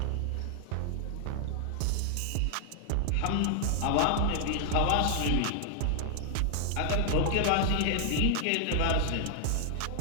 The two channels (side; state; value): both; different; correlation 0.00